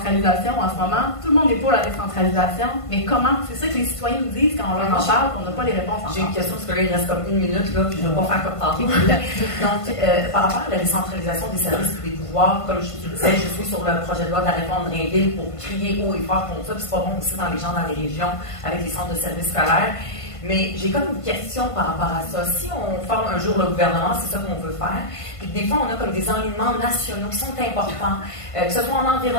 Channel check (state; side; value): late; right; 1.5 ms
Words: en ce moment, tout le monde est pour la décentralisation, mais comment? C'est ça que les citoyens nous disent quand on leur en parle, qu'on n'a pas les réponses encore. J'ai une question, parce que là, il reste comme 1 minute, là, puis je ne vais pas faire comme tantôt. Donc, par rapport à la décentralisation des services et des pouvoirs, comme je te disais, je suis sur le projet de loi de la réforme Drinville pour crier haut et fort contre ça, puis c'est pas bon aussi dans les gens dans les régions, avec les centres de services scolaires. Mais j'ai comme une question par rapport à ça. Si on forme un jour le gouvernement, c'est ça qu'on veut faire, puis des fois on a comme des enlignements nationaux qui sont importants, que ce soit en